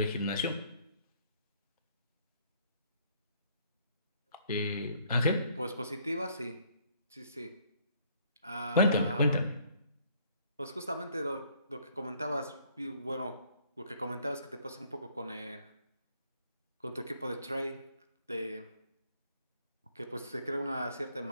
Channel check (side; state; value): both; inverted; correlation -0.63